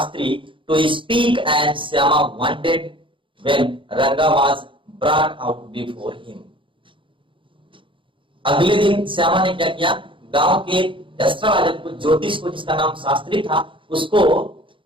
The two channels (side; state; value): left; late; 0.25 ms